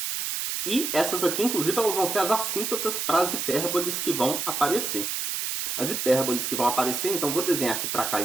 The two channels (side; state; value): right; noise; hiss, 2 dB below the sound